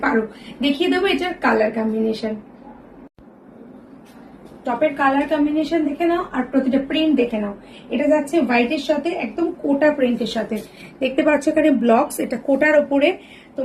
পারো। দেখিয়ে দেবো এটার কালার কম্বিনেশন। টপের কালার কম্বিনেশন দেখে নাও আর প্রতিটা প্রিন্ট দেখে নাও। এটা যাচ্ছে হোয়াইটের সাথে একদম কোটা প্রিন্টের সাথে। দেখতে পাচ্ছ এখানে ব্লকস, এটা কোটার ওপরে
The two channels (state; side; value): identical; both; correlation 1.00